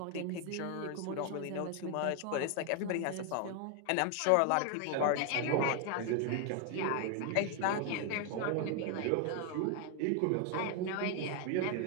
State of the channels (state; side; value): different; both; correlation 0.00